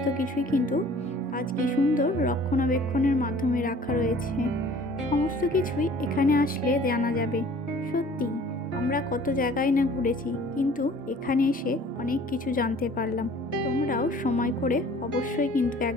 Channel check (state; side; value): normal; both; correlation 0.50